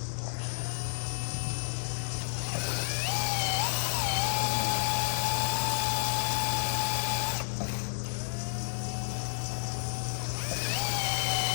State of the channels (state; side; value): silent; right; digital silence